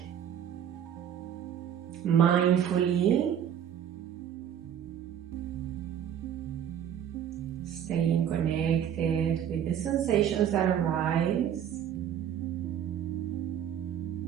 Mindfully, staying connected with the sensations that arise.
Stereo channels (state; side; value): quieter; left; 9.6 dB